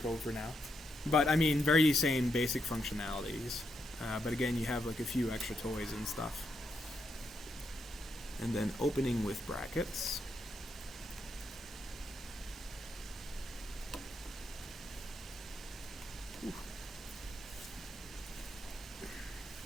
Code for now, but I mean, very same basic functionalities. But again, you have like a few extra toys and stuff. And then opening with brackets.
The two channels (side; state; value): both; normal; correlation 0.81